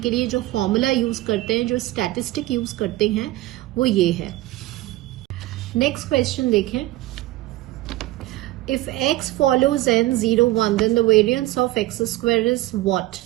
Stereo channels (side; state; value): left; quieter; 17.5 dB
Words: लिए जो फॉर्मूला यूज करते हैं, जो स्टैटिस्टिक यूज करते हैं, वो ये है। नेक्स्ट क्वेश्चन देखें, if x follows n 0 1 then the variance of x square is what?